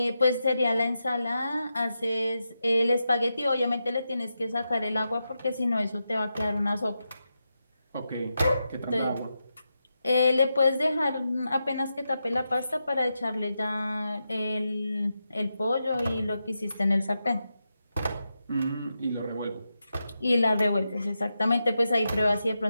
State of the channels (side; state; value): both; inverted; correlation -0.88